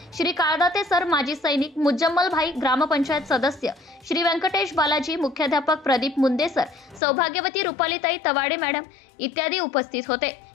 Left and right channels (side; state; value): right; drops out; at 7.0 s